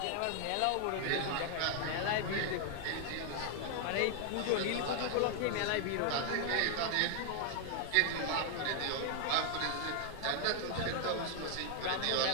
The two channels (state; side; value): different; both; correlation 0.00